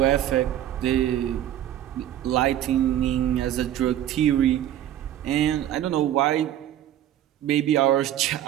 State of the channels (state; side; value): quieter; left; 11.8 dB